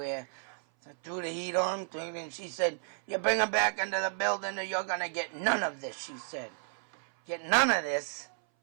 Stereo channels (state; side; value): silent; left; 56 dB below the other